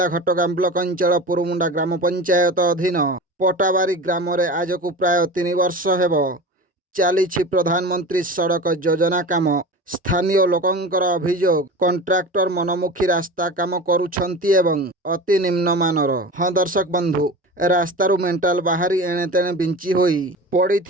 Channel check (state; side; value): normal; both; correlation 0.32